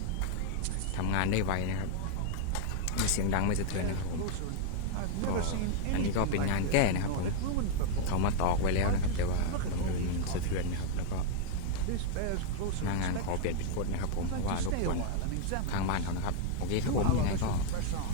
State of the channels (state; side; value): different; both; correlation 0.00